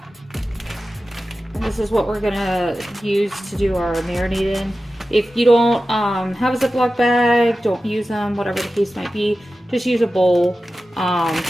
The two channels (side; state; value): both; normal; correlation 0.94